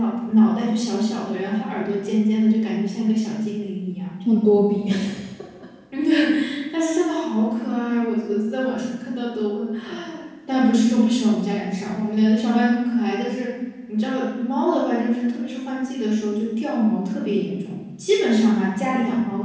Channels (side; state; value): both; identical; correlation 1.00